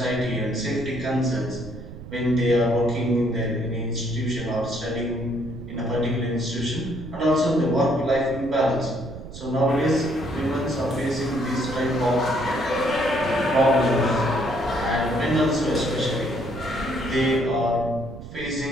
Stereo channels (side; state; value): right; noise; rumble, 13 dB below the sound